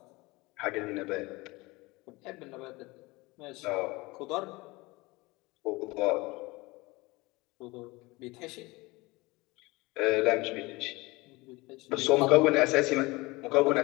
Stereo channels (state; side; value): quieter; right; 22.8 dB